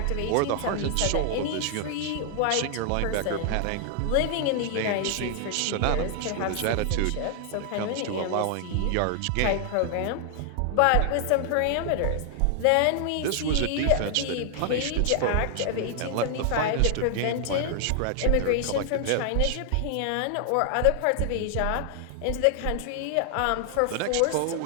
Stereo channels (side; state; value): both; different; correlation 0.00